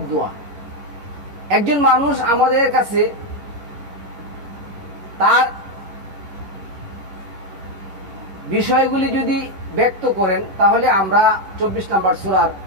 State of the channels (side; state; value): left; late; 11 ms